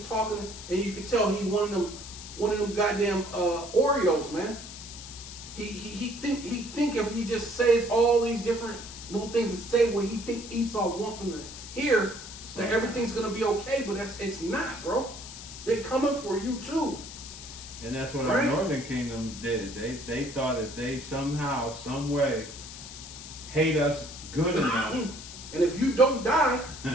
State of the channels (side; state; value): left; noise; hiss, 12 dB below the sound